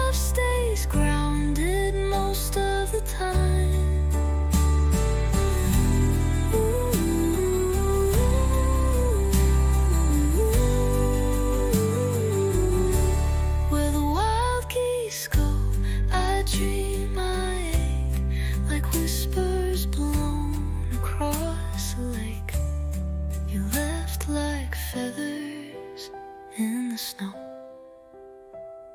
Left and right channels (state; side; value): identical; both; correlation 1.00